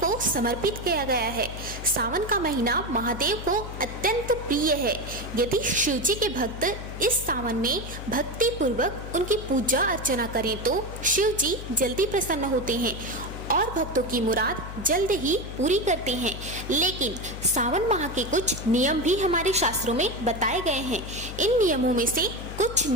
को समर्पित किया गया है। सावन का महीना महादेव को अत्यंत प्रिय है। यदि शिव जी के भक्त इस सावन में भक्ति पूर्वक उनकी पूजा अर्चना करें तो शिव जी जल्दी प्रसन्न होते हैं और भक्तों की मुराद जल्द ही पूरी करते हैं। लेकिन सावन माह के कुछ नियम भी हमारे शास्त्रों में बताए गए हैं। इन नियमों में से कुछ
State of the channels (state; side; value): noise; left; hum, 10 dB below the sound